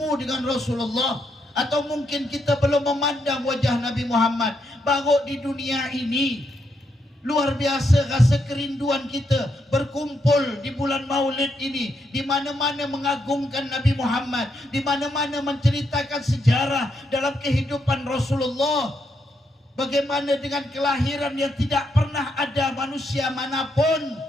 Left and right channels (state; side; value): normal; both; correlation 0.79